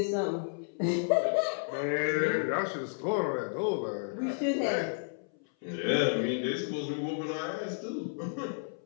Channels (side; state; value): right; silent; 57 dB below the other